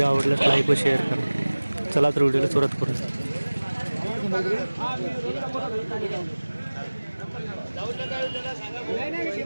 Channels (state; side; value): inverted; both; correlation -1.00